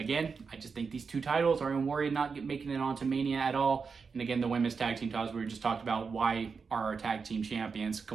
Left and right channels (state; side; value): quieter; left; 5.3 dB